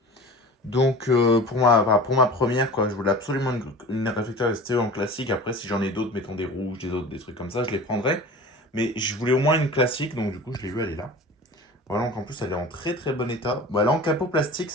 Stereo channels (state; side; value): normal; both; correlation 0.38